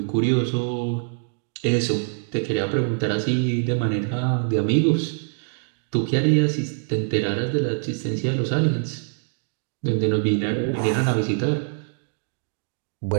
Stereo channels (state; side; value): silent; left; digital silence